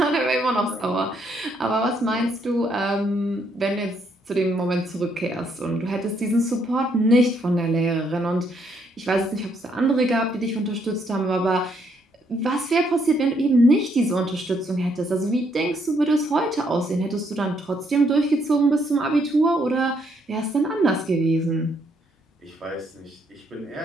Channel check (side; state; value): both; normal; correlation 0.72